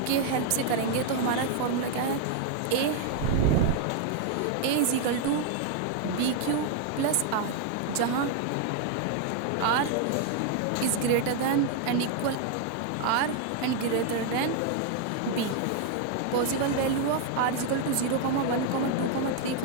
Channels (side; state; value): both; different; correlation 0.00